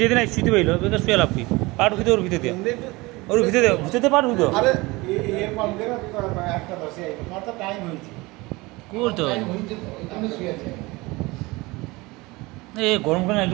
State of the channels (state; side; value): quieter; left; 22.7 dB